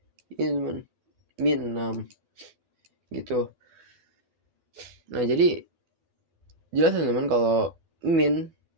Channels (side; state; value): left; late; 12 ms